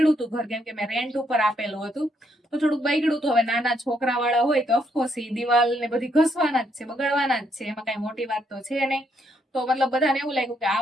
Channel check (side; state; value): both; normal; correlation 0.74